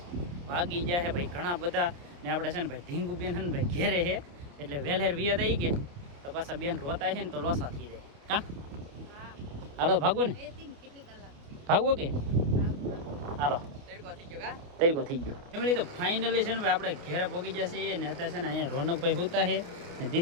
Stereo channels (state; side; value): late; left; 29 ms